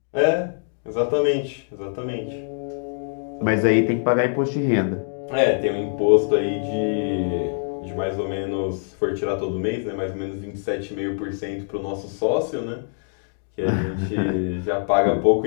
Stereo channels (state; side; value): silent; right; digital silence